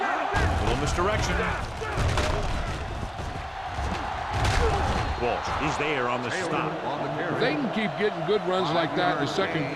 A little misdirection. Walsh is there on the stop. If they can keep getting good runs like that in the second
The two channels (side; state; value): both; identical; correlation 1.00